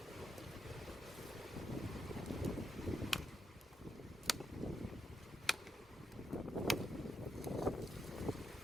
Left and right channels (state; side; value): normal; both; correlation 0.83